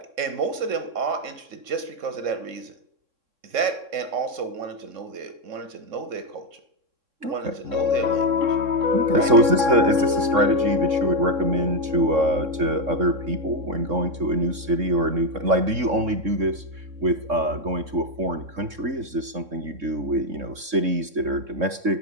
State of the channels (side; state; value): left; late; 3.6 ms